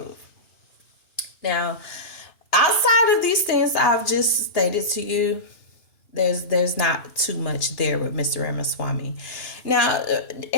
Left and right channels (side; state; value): right; late; 2.9 ms